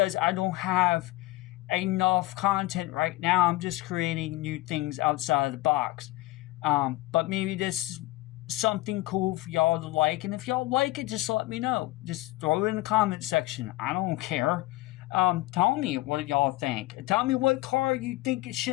I don't have enough content right now. I'm just creating new things outside of the box. But maybe this is something cool for y'all to like, and if y'all like it, just let me know. Just throw it in the comment section. I don't care. Tell me what y'all think. Tell me what car you think it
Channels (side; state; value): right; quieter; 18.9 dB